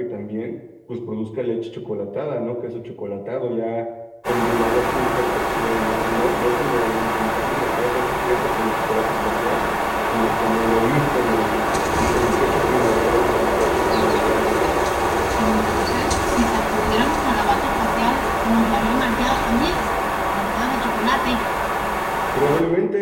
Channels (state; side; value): identical; both; correlation 1.00